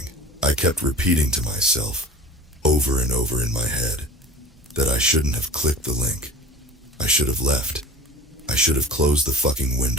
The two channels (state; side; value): normal; both; correlation 0.39